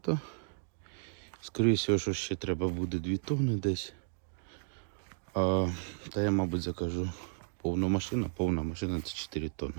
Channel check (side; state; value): left; silent; digital silence